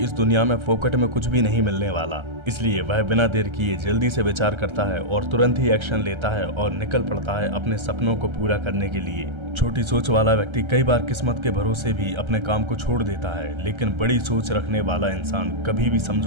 दुनिया में फोकट में कुछ भी नहीं मिलने वाला। इसलिए वह बिना देर किए जल्दी से विचार करता है और तुरंत ही एक्शन लेता है और निकल पड़ता है अपने सपनों को पूरा करने के लिए। छोटी सोच वाला व्यक्ति कई बार किस्मत के भरोसे भी अपने काम को छोड़ देता है, लेकिन बड़ी सोच रखने वाला इंसान कभी भी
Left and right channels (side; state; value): left; late; 1.3 ms